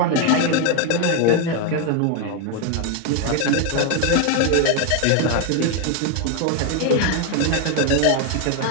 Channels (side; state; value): both; different; correlation 0.01